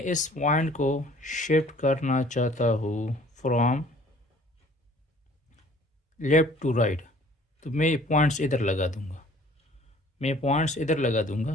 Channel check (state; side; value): normal; both; correlation 0.54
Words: इस पॉइंट को शिफ्ट करना चाहता हूँ फ्रॉम लेफ़्ट टू राइट, तो मैं पॉइंट्स इधर लगा दूँगा। मैं पॉइंट्स इधर लगा